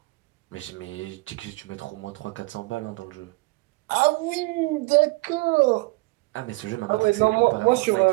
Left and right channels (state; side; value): quieter; left; 24.7 dB